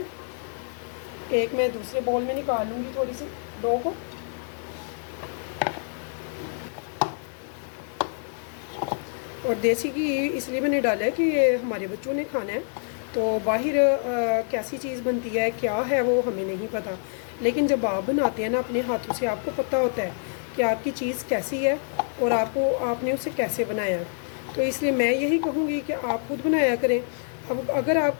एक मैं दूसरे बाउल में निकाल लूँगी थोड़ी सी डो को। और देसी घी इसलिए मैंने डाला है कि ये हमारे बच्चों ने खाना है। तो बाहर कैसी चीज़ बनती है, क्या है, वो हमें नहीं पता। लेकिन जब आप बनाते हैं ना अपने हाथों से, आपको पता होता है कि आपकी चीज़ कैसी है और आपने उसे कैसे बनाया। तो इसलिए मैं यही कहूँगी कि आप खुद बनाया करें। अब अगर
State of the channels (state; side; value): silent; right; digital silence